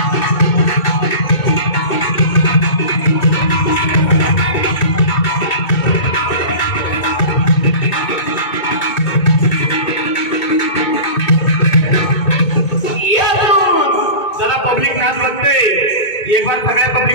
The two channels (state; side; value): late; right; 2.2 ms